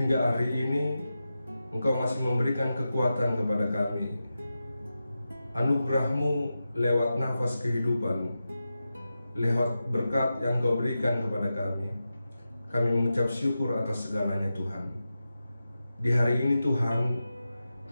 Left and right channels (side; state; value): both; inverted; correlation -0.92